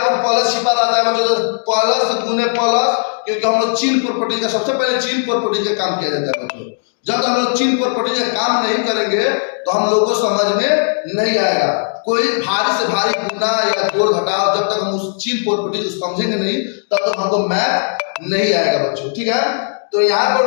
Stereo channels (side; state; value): right; silent; digital silence